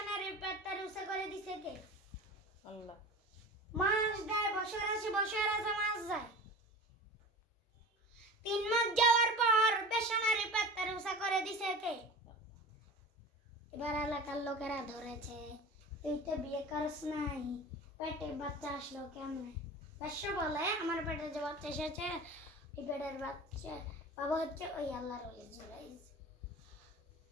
নারীর পেটটা রুসে করে দিছে কে? আল্লাহ। মাস দেয়, বছর আসে মাস যায়। 3 মাস যাওয়ার পর বেশ্যা নারীর পেটটা রুসে করে দিছে কে? এবার এলাকার লোকেরা ধরেছে, তুই তো বিয়ে করস নাই, পেটে বাচ্চা আসলো কেমনে? বেশ্যা বলে, আমার পেটে যে বাচ্চা এসেছে, এই পেটের বাচ্চা বাবা হচ্ছে ওই আল্লাহর ওলি জুরাইজ।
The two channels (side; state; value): both; normal; correlation 0.35